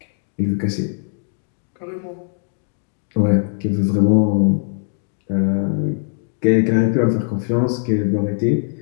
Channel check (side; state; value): right; silent; digital silence